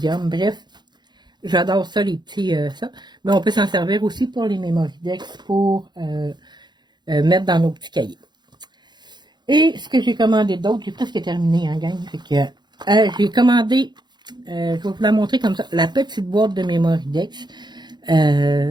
Bref. J'adore ça, les petits, ça. Mais on peut s'en servir aussi pour les Mémoridex pour mettre dans nos petits cahiers. Et ce que j'ai commandé d'autre, j'ai presque terminé, hein, gang. Fait que j'ai commandé, je vais vous la montrer comme ça, la petite boîte de Mémoridex.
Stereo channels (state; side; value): late; left; 0.21 ms